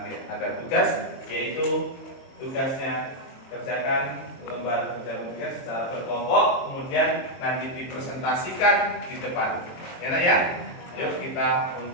ada tugas, yaitu tugasnya kerjakan lembar kerja tugas secara berkelompok, kemudian nanti dipresentasikan di depan. Enak ya? Yuk kita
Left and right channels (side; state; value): right; late; 22 ms